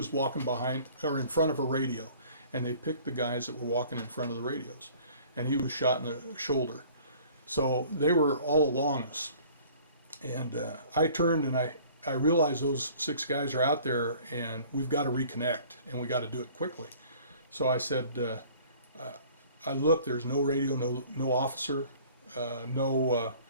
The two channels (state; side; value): inverted; both; correlation -0.51